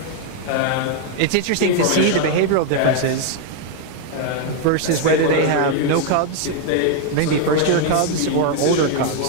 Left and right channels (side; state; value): both; different; correlation 0.00